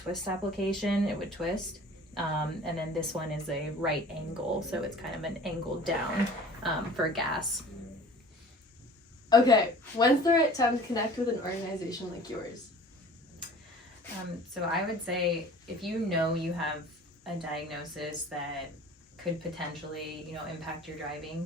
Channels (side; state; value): both; normal; correlation 0.45